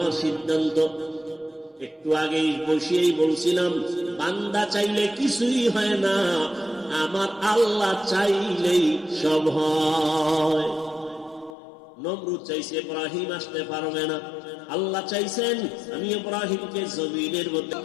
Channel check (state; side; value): drops out; right; at 11.5 s